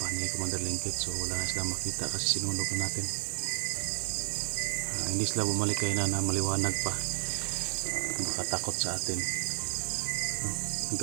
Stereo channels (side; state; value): left; silent; digital silence